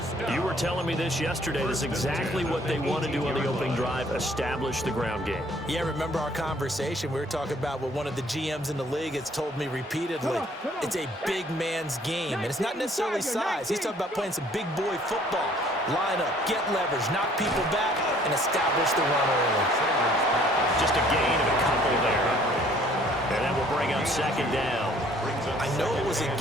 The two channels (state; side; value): normal; both; correlation 0.59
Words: You were telling me this yesterday. This is exactly what they want to do on the opening drive, establish the ground game. Yeah, remember our conversation? We were talking about what one of the GMs in the league has told me repeatedly. It's a big man's game, and it's not necessarily size. He's talking about playing some big boy football. Line up, get leverage, knock people back, and establish the run early. Just a gain of a couple there. And that will bring up 2nd down. I know it was a